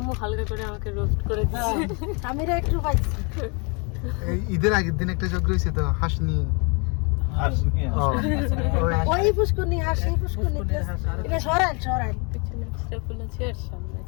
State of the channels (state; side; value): quieter; right; 32.9 dB